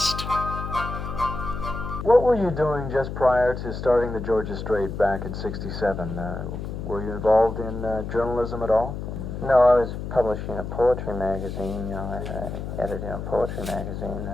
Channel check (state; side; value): noise; left; hum, 6 dB below the sound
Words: What were you doing just prior to starting the Georgia Strait back in '67? Were you involved in journalism at all? No, I was publishing a poetry magazine. I edited a poetry magazine,